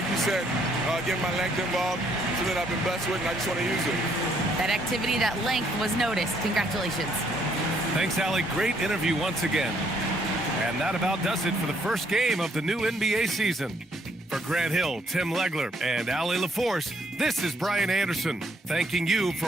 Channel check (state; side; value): normal; both; correlation 0.69